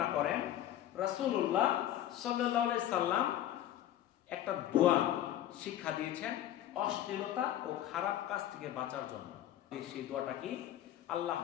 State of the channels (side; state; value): right; quieter; 12.2 dB